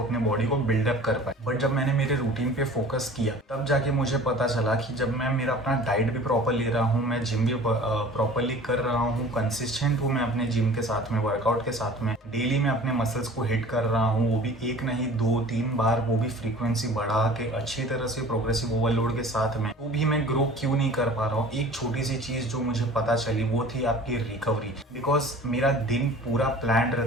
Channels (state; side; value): normal; both; correlation 0.44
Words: अपने बॉडी को बिल्डअप कर पाए। बट जब मैंने मेरे रूटीन पे फोकस किया तब जाके मुझे पता चला कि जब मैं मेरा अपना डाइट भी प्रॉपर ले रहा हूँ, मैं जिम भी प्रॉपरली कर रहा हूँ, कंसिस्टेंट हूँ मैं अपने जिम के साथ में, वर्कआउट के साथ में, डेली मैं अपने मसल्स को हिट कर रहा हूँ, वो भी एक नहीं 2-3 बार, वो भी फ्रीक्वेंसी बढ़ा के अच्छी तरह से प्रोग्रेसिव ओवरलोड के साथ में, वो भी मैं ग्रो क्यों नहीं कर पा रहा हूँ? एक छोटी सी चीज जो मुझे पता चली वो थी आपकी रिकवरी। बिकॉज मेरा दिन पूरा प्लान